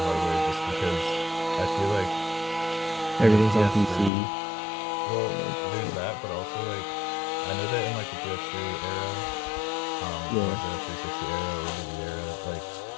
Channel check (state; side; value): drops out; right; at 4.1 s